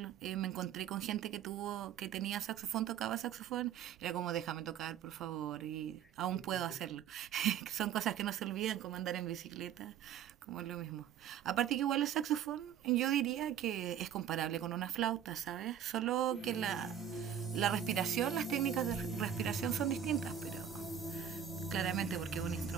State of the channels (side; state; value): left; quieter; 9.4 dB